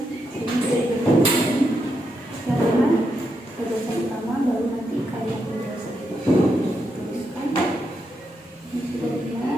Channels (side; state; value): both; normal; correlation 0.82